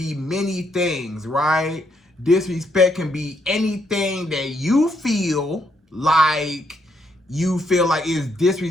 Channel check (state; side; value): normal; both; correlation 0.75